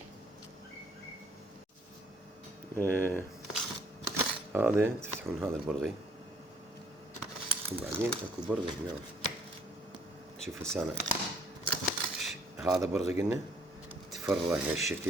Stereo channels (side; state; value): both; normal; correlation 0.63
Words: هذا تفتحون هذا البرغي وبعدين اكو برغي هنا. شوف هسه أنا هذا برغي قلنا تفرع